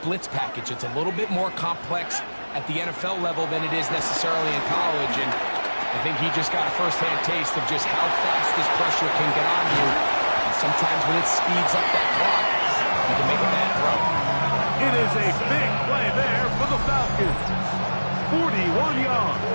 package. It's a little bit more complex at the NFL level than it is necessarily in college, and I think he just got a first-hand taste of just how fast this pressure can get on you. And sometimes when it speeds up that clock, you can make a bad throw. It is a big play there for the Falcons. 41 yards.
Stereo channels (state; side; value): inverted; both; correlation -1.00